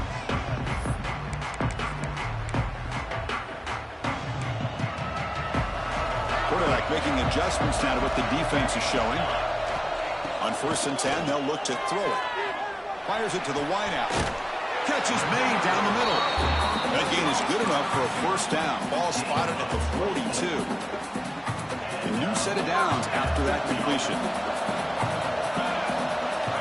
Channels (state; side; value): identical; both; correlation 1.00